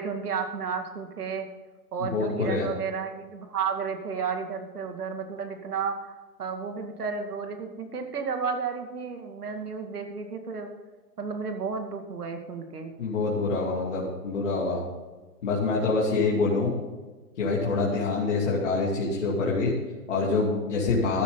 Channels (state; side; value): normal; both; correlation 0.12